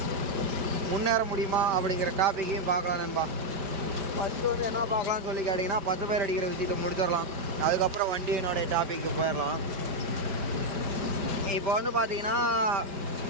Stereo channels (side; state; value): left; late; 5.0 ms